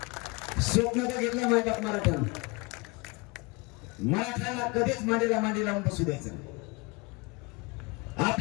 स्वप्न बघितलं माझ्या मराठ्यानं. मराठ्याला कधीच मांडीला मांडी लावून बसू द्यायचं.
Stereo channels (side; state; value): right; quieter; 27.0 dB